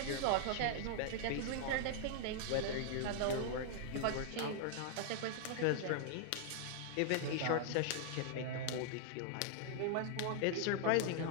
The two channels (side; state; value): both; different; correlation -0.01